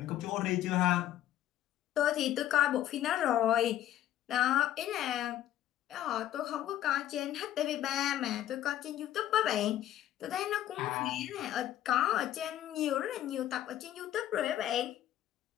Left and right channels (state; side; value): quieter; right; 12.5 dB